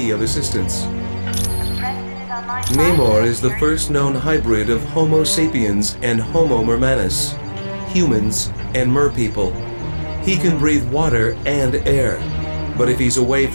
of assistance? Namor is the first known hybrid of Homo sapiens and Homo mermanus, humans and merpeople. He can breathe water and air, but if he's away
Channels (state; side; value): inverted; both; correlation -1.00